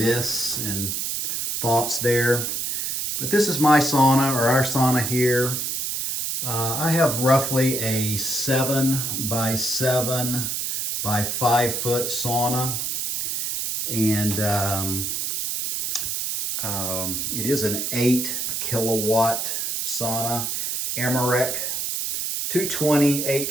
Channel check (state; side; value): noise; right; hiss, 2 dB below the sound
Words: and thoughts there. But this is my sauna, or our sauna here. I have roughly a 7 by 7 by 5 foot sauna. And it is an 8 kilowatt sauna, Amarek, 220, 8